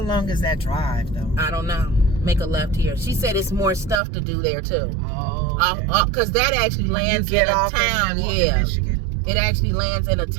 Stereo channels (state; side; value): drops out; left; at 4.0 s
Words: long is that drive though? I don't know. Make a left here. She said it's more stuff to do there too. Oh. Okay. Because that actually When you lands get in a off town. in Yeah. Michigan? It actually lands in a